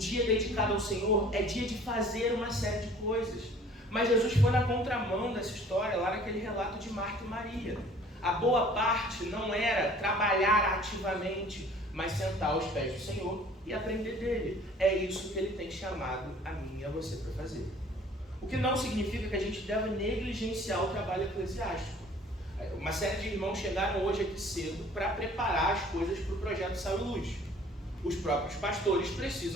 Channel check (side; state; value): both; normal; correlation 0.52